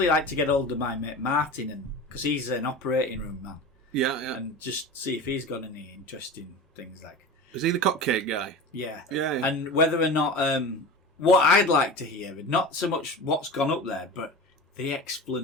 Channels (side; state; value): both; normal; correlation 0.31